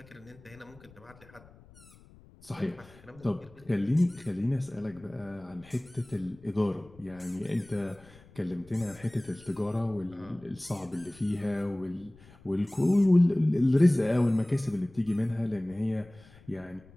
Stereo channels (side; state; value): left; noise; rumble, 24 dB below the sound